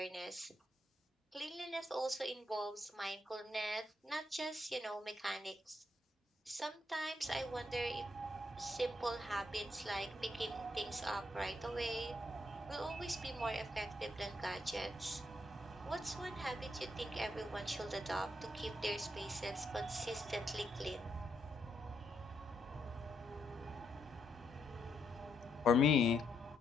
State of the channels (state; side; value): normal; both; correlation 0.78